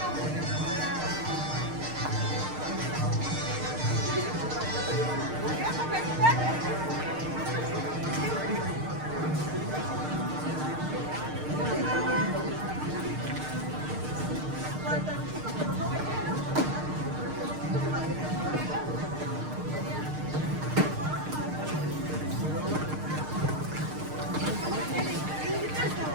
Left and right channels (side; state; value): left; late; 6.5 ms